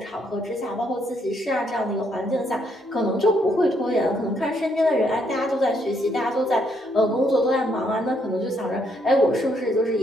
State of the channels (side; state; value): both; normal; correlation 0.73